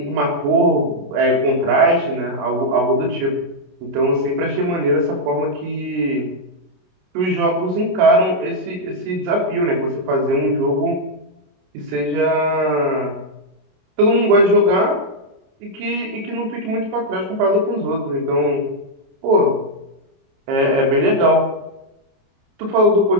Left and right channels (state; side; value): late; left; 27 ms